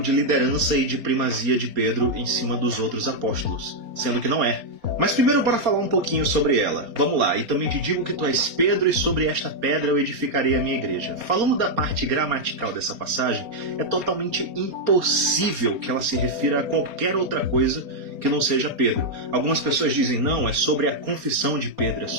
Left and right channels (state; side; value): late; left; 4.3 ms